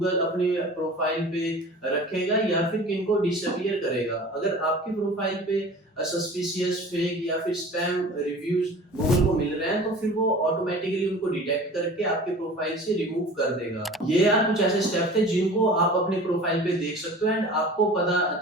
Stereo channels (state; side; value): normal; both; correlation 0.41